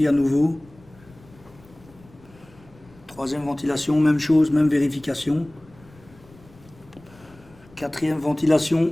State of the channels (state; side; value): noise; left; rumble, 25 dB below the sound